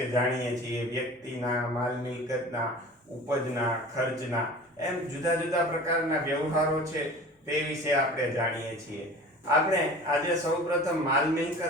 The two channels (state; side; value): normal; both; correlation 0.40